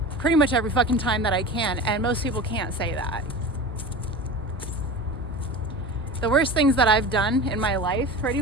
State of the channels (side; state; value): both; normal; correlation 0.32